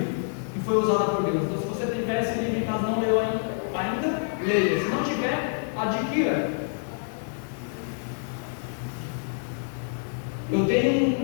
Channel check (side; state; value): right; silent; 59 dB below the other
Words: que foi usada por Deus. Então, se você tiver esse livro em casa, não leu ainda, leia. Se não tiver, adquira. Eu